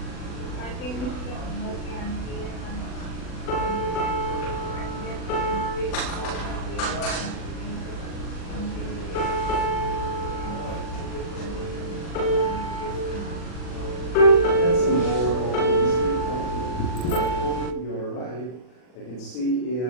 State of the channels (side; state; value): right; late; 40 ms